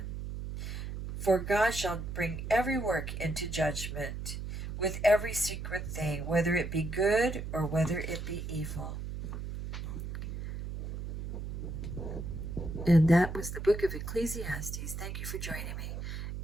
For God shall bring every work into judgment, with every secret thing, whether it be good or whether it be evil. And that was the book of Ecclesiastes. Thank you for joining me,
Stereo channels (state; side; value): noise; right; hum, 6 dB below the sound